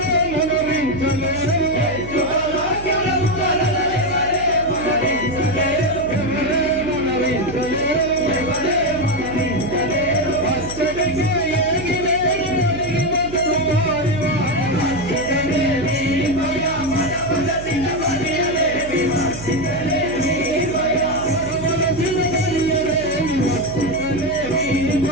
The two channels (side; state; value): right; noise; hum, 12 dB below the sound